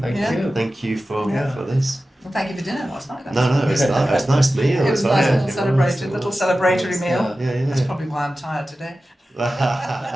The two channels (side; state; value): both; normal; correlation 0.94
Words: thank Yeah. you. Thank you for Yeah. this. well, thank you for dinner last night. No, it's nice meal. It was a nice little celebratory meal. Yeah, That's probably why I'm tired today.